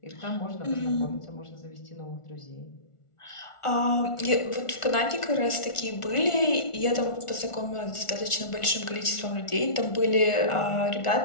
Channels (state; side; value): late; right; 1.4 ms